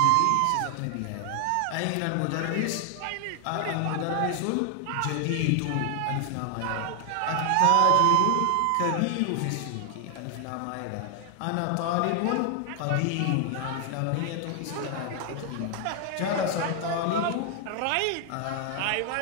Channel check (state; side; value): different; both; correlation 0.00